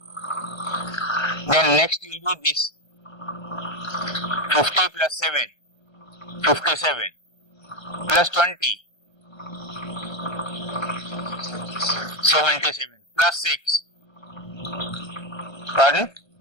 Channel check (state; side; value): late; right; 1.5 ms